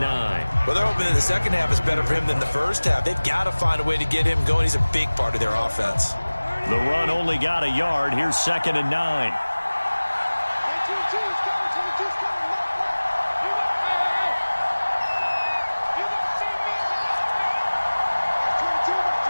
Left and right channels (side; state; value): both; inverted; correlation -1.00